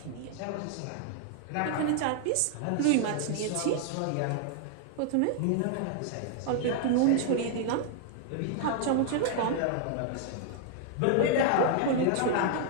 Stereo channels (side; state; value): both; different; correlation -0.01